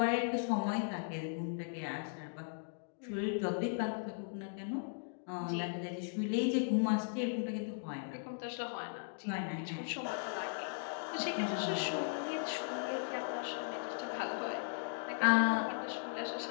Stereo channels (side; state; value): right; silent; digital silence